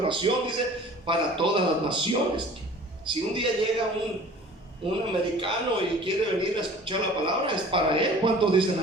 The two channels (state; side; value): normal; both; correlation 0.46